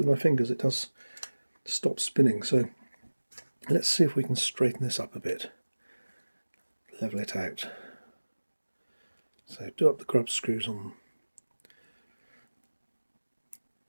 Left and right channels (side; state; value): both; inverted; correlation -1.00